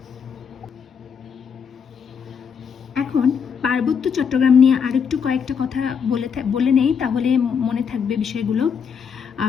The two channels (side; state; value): right; quieter; 6.7 dB